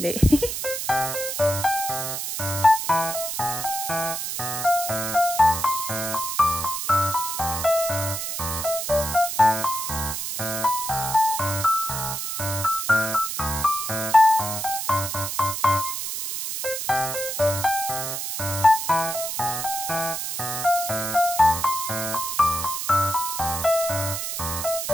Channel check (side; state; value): right; noise; hiss, 4 dB below the sound